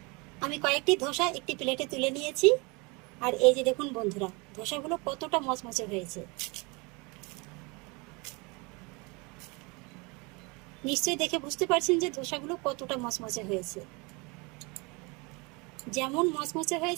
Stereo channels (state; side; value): quieter; left; 28.3 dB